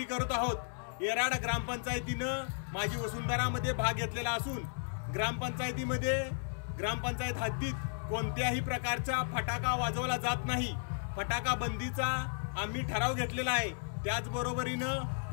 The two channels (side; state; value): right; silent; 55 dB below the other